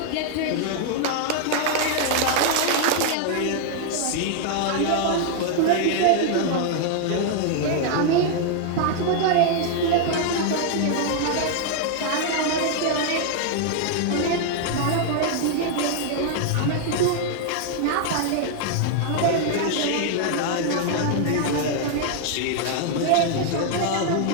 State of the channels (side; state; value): both; different; correlation 0.00